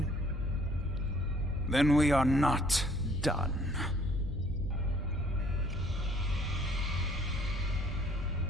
Then we are not done.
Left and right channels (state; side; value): normal; both; correlation 0.60